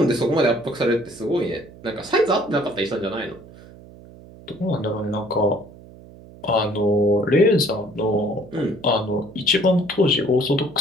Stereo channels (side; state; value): right; noise; hum, 20 dB below the sound